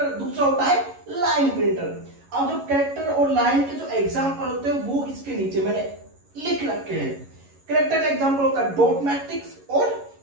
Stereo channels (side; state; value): left; late; 11 ms